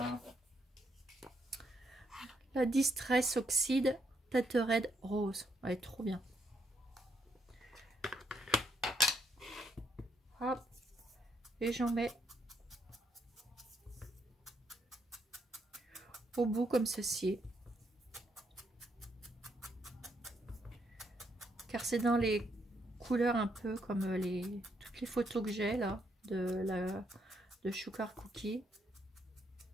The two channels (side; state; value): both; normal; correlation 0.75